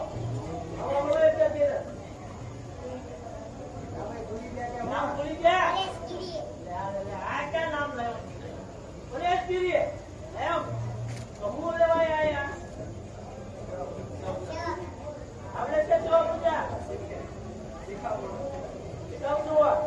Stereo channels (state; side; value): identical; both; correlation 1.00